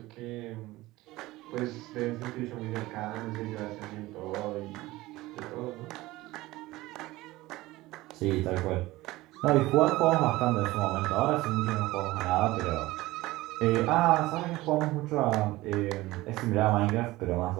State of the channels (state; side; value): quieter; left; 18.7 dB